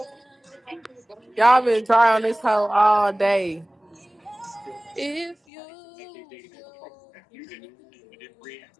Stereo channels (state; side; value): drops out; right; at 5.4 s